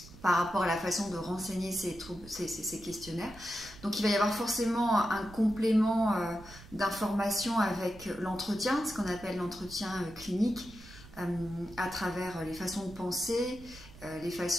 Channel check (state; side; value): noise; right; rumble, 18 dB below the sound